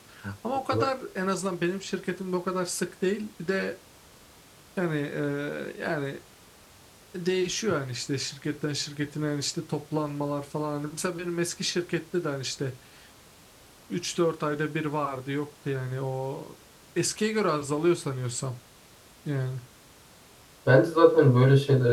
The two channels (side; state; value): both; identical; correlation 1.00